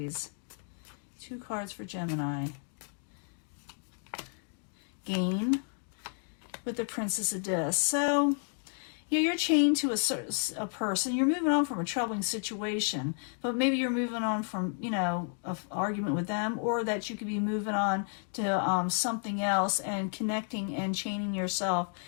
Two cards for Gemini. Gain with the Princess of Discs. So, you know, you're chained to a person. You're moving on from a troubling situation, but maybe you're moving on from, you know, an argument with them, or that you could be moving on to something else and connecting and chaining yourself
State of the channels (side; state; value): right; silent; 56 dB below the other